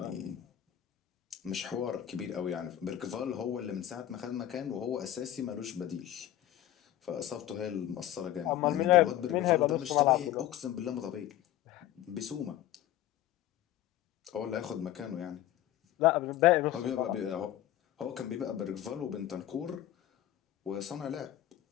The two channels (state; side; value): quieter; right; 12.8 dB